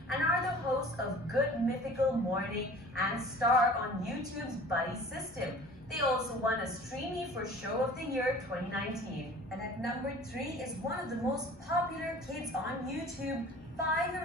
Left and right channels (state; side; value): normal; both; correlation 0.45